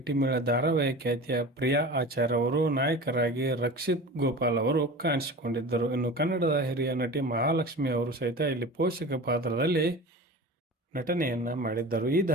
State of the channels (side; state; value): both; normal; correlation 0.34